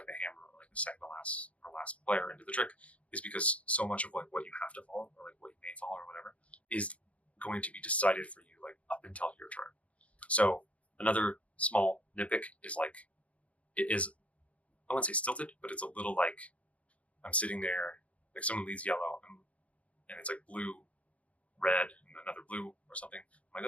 the hammer or like the second to last or last player into the trick, is because so much of like what you have to follow or like what you may follow or whatever is going to be decided for you like up until your turn. So another small nitpick is like, it is I wouldn't say stilted, but it's a little like I'm sitting there, like someone leads yellow, and it's like blue, red, and another blue or something. I'm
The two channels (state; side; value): late; right; 0.064 ms